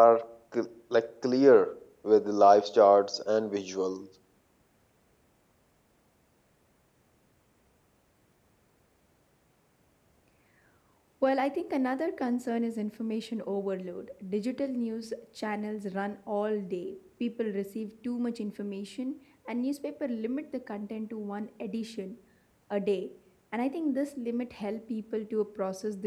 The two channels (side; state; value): both; identical; correlation 1.00